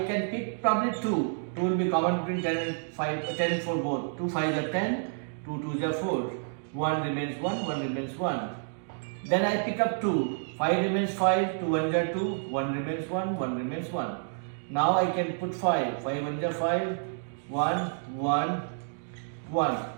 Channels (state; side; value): silent; left; digital silence